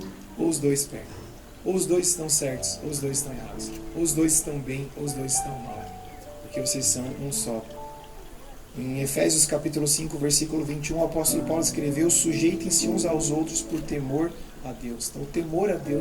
ou os 2 perdem. Ou os 2 estão certos, ou os 2 estão errados. Ou os 2 estão bem, ou os 2 estão mal. Porque vocês são um só. Em Efésios capítulo 5, versículo 21, o apóstolo Paulo escreveu: sujeitem-se uns aos outros por temor a Deus. Então o temor a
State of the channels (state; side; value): identical; both; correlation 1.00